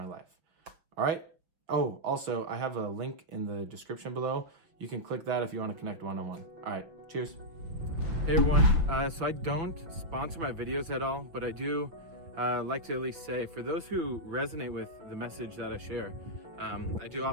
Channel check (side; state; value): left; late; 6.0 ms